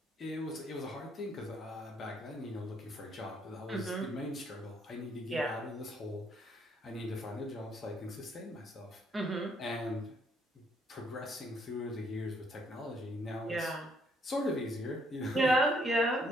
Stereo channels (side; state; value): both; normal; correlation 0.69